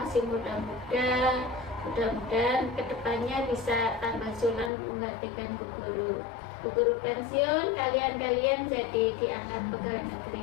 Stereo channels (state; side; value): drops out; right; at 4.7 s